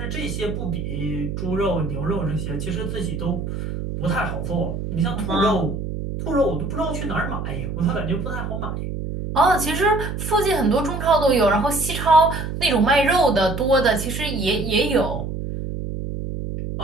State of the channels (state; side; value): noise; right; hum, 5 dB below the sound